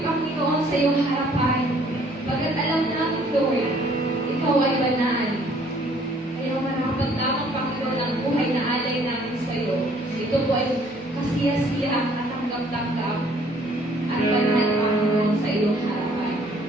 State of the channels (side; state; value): both; normal; correlation 0.60